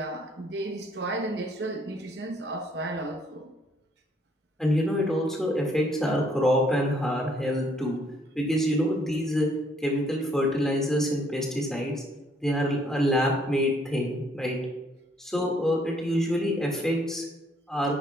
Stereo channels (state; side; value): normal; both; correlation 0.66